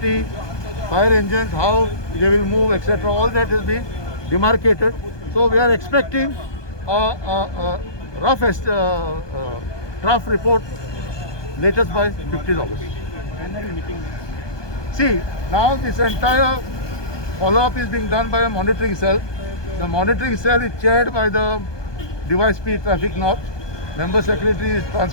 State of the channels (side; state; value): right; late; 1.2 ms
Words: fire engines, how they will move, etc., all that has been demarcated. So we are expecting a rough draft report latest by 15th August. See, now this entire follow-up is being done by a monitoring cell. The monitoring cell is chaired by the Device P Traffic North. Member Secretary is